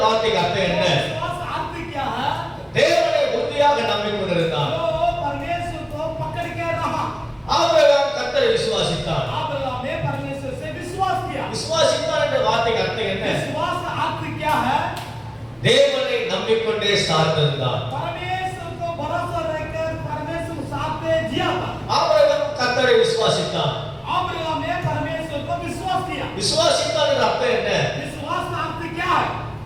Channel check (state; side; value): identical; both; correlation 1.00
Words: வார்த்தைக்கு அர்த்தம் என்ன? विश्वास का अर्थ क्या है? தேவனை உறுதியாக நம்பிக்கொண்டிருந்தான். जो परमेश्वर को पकड़ के रहा। ஆபிரகாம் கர்த்தரை விசுவாசித்தான். अब्राहम ने परमेश्वर से विश्वास किया। விசுவாசித்தான் என்ற வார்த்தைக்கு அர்த்தம் என்ன? विश्वास का अर्थ क्या है? தேவனை நம்பிக்கொண்டே சார்ந்திருந்தான். परमेश्वर को भरोसा रखकर परमेश्वर साथ में जिया था। ஆபிரகாம் கர்த்தரை விசுவாசித்தான். अब्राहम ने परमेश्वर को विश्वास किया। விசுவாசித்தான் என்ற அர்த்தம் என்ன? विश्वास का अर्थ क्या है?